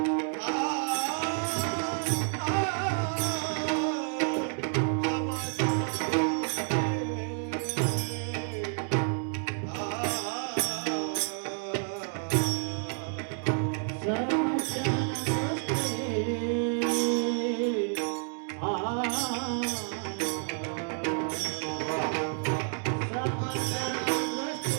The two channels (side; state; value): left; silent; 58 dB below the other